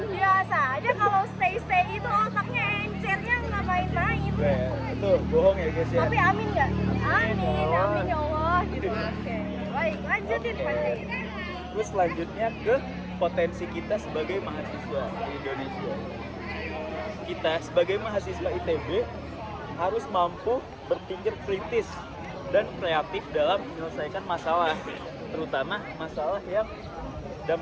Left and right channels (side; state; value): both; identical; correlation 1.00